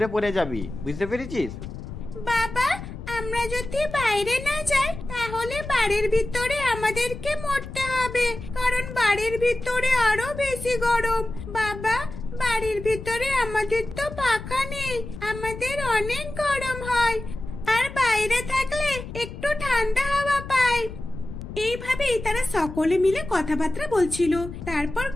পড়ে যাবি, বুঝতে পেরেছিস? বাবা আমরা যদি বাইরে না যাই তাহলে বাড়ির ভিতরে আমাদেরকে মরতে হবে, কারণ বাড়ির ভিতরে আরো বেশি গরম। বাবা বাড়ির ভিতরে আমাদের তো পাখা নেই, আমাদের অনেক গরম হয়, আর বাইরে থাকলে একটু ঠান্ডা হাওয়া পাই। এইভাবেই তারা সকলে মিলে কথাবার্তা বলছিল। তারপর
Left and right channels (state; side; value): noise; left; rumble, 10 dB below the sound